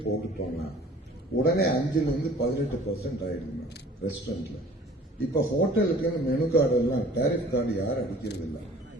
போட்டுட்டோம்னா உடனே 5லிருந்து 18% ஆயிடுது மேடம் ரெஸ்டாரண்ட்ல. இப்ப ஹோட்டலுக்கு மெனு கார்டு எல்லாம் டேரிஃப் கார்டு யாரும் அடிக்கிறது இல்லை.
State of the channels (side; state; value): both; normal; correlation 0.50